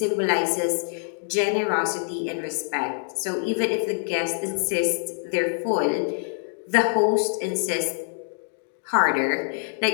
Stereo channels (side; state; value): right; silent; digital silence